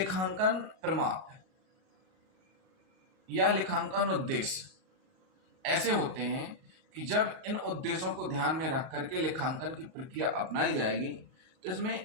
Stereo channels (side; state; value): left; late; 38 ms